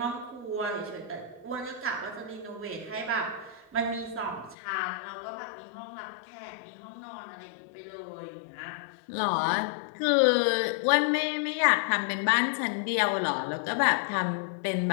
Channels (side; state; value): right; drops out; at 4.5 s